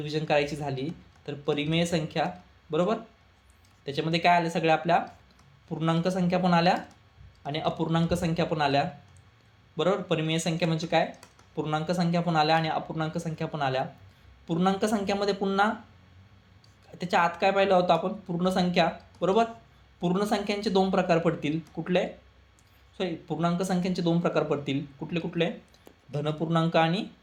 करायची झाली तर परिमेय संख्या बरोबर, त्याच्यामध्ये काय आलं, सगळ्या आपल्या पूर्णांक संख्या पण आल्या आणि अपूर्णांक संख्या पण आल्या बरोबर. परिमेय संख्या म्हणजे काय, पूर्णांक संख्या पण आल्या आणि अपूर्णांक संख्या पण आल्या. पूर्णांक संख्यामध्ये पुन्हा त्याच्या आत काय पाहिलं होतं आपण, पूर्ण संख्या बरोबर. पूर्ण संख्यांचे 2 प्रकार पडतील. कुठले, पूर्णांक संख्यांचे 2 प्रकार पडतील. कुठले, धनपूर्णांक आणि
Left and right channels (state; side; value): identical; both; correlation 1.00